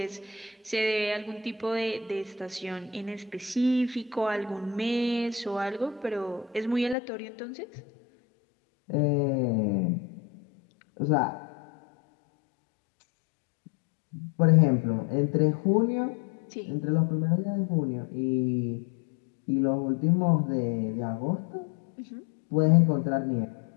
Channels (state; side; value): drops out; right; at 7.0 s